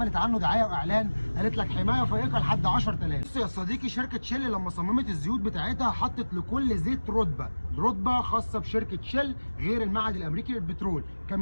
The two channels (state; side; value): inverted; both; correlation -1.00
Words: عنه دعايه واعلان قالت لك حمايه فائقه لحد 10000. بص يا صديقي، شركه شيل لما صممت الزيوت بتاعتها حطت لكل زيت رتبه خاصه بشركه شيل غير المعهد الامريكي للبترول.